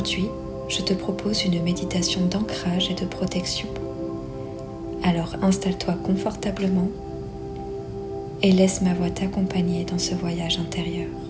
je te propose une méditation d'ancrage et de protection. Alors installe-toi confortablement et laisse ma voix t'accompagner dans ce voyage intérieur.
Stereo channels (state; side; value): identical; both; correlation 1.00